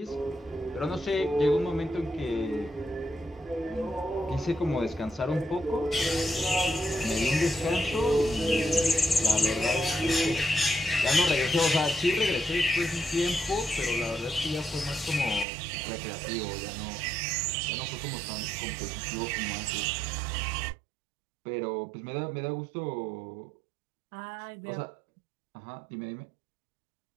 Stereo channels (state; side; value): drops out; left; at 15.5 s